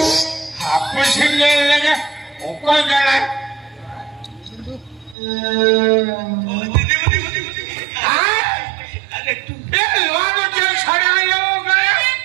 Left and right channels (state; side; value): drops out; left; at 5.2 s